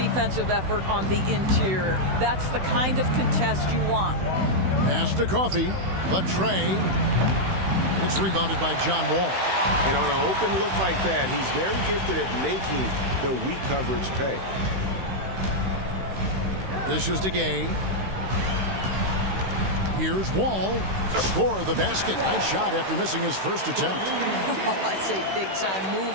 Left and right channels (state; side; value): late; left; 16 ms